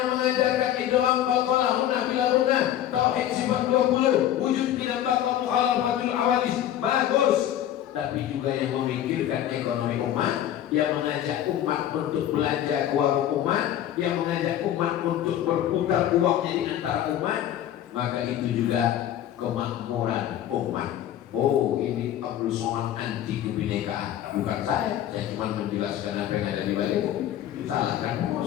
mengajarkan idgham qalqalah hunna bila hunna, tauhid sifat 20, wujud tidak bakal mukhalafatul awadis, bagus. Tapi juga yang memikirkan ekonomi umat, yang mengajak umat untuk belanja ke warung umat, yang mengajak umat untuk berputar uangnya di antara umat, maka itu juga kemakmuran umat. Oh, ini Abdul Somad anti kebinekaan. Bukan saya cuma menjelaskan apa yang ada di balik. Salahkan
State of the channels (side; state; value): right; quieter; 11.6 dB